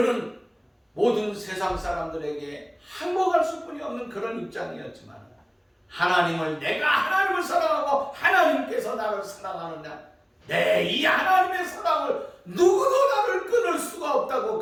모든 세상 사람들에게 항복할 수뿐이 없는 그런 입장이었지만 내가 하나님을 사랑하고 하나님께서 나를 사랑하느냐, 내 이 하나님의 사랑을 누구도 나를 끊을 수가 없다고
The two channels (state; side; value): identical; both; correlation 1.00